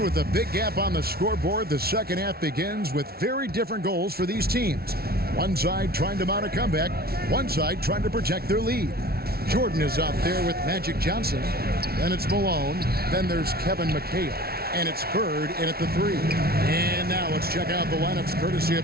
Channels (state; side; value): late; left; 0.45 ms